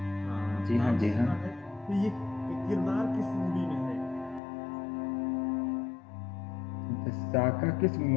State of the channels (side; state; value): right; drops out; at 4.4 s